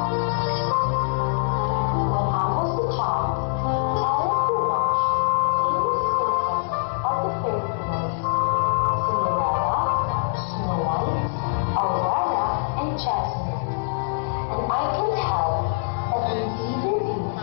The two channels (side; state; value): right; silent; digital silence